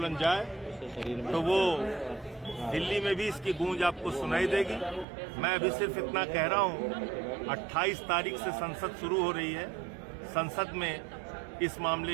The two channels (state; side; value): drops out; left; at 5.1 s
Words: जाए तो वो दिल्ली में भी इसकी गूंज आपको सुनाई देगी। मैं अभी सिर्फ इतना कह रहा हूं, 28 तारीख से संसद शुरू हो रही है, संसद में इस मामले